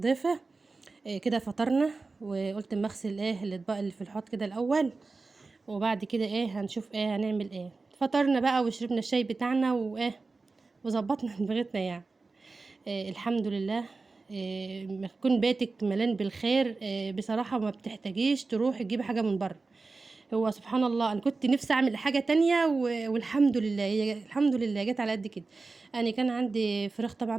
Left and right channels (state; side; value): quieter; left; 3.8 dB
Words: ضيفة. كده فطرنا، وقلت اما اغسل الاطباق اللي في الحوض كده الاول، وبعد كده هنشوف هنعمل فطرنا بقى وشربنا الشاي بتاعنا وظبطنا دماغتنا يعني. الحمد لله. ما يكون بيتك ملان بالخير. بصراحة ما بتحتاجيش تروح تجيب حاجة من بره. هو سبحان الله، انا كنت نفسي اعمل حاجة تانية والحمد لله الحمد لله جت على قد كده. انا كان عندي فراخ طبعا